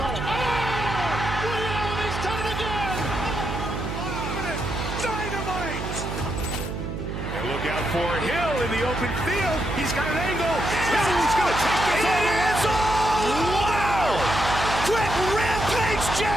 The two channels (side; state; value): right; noise; hum, 5 dB below the sound